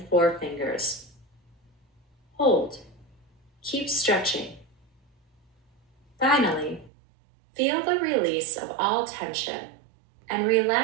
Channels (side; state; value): left; drops out; at 6.9 s